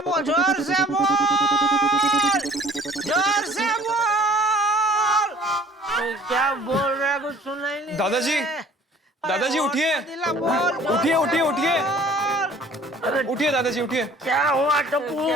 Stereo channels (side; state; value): both; normal; correlation 0.52